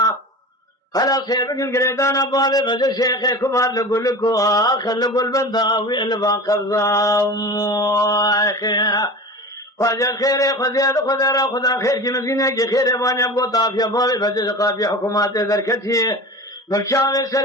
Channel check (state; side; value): normal; both; correlation 0.33